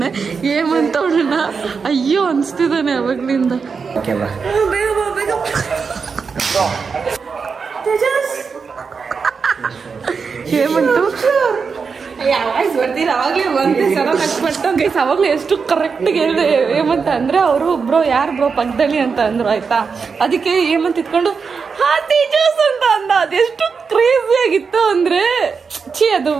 ಏಮಂತ ಅವಳನ್ನ ಅಯ್ಯೋ ಅನ್ಸ್ತಿದ್ದಾನೆ ಅವಾಗ್ಲಿಂದ. ಏಮಂಟು ಬರ್ತೀರ ಅವಾಗ್ಲೇ ಒಂದೇ ಸಲ ನಕ್ಬಿಟ್ಟು ಗೈಸ್ ಅವಾಗ್ಲೇ ಎಷ್ಟು ಕರೆಕ್ಟ್ ಹೇಳಿದೆ ಏಮಂತ ಅಂದ್ರೆ ಅವರು ಬ್ರೋ ಯಾರು ಬ್ರೋ ಪಕ್ಕದಲ್ಲಿ ಅಂತ ಅಂದ್ರು ಆಯ್ತಾ. ಅದಕ್ಕೆ ಏಮಂತ ಇಟ್ಕೊಂಡು ಹಾ ತೇಜಸ್ ಅಂತ ಅಂದ. ಅದೆಷ್ಟು ಕ್ರೇಜಿ ಆಗಿತ್ತು ಅಂದ್ರೆ ಅದು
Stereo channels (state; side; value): quieter; left; 5.4 dB